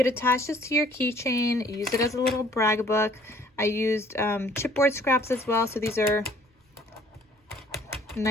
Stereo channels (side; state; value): both; normal; correlation 0.58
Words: attach this to your keychain, use it as a little brag book. I used chipboard scraps as well, so these are